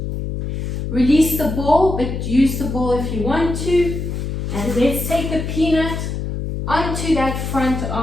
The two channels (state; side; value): noise; left; hum, 4 dB below the sound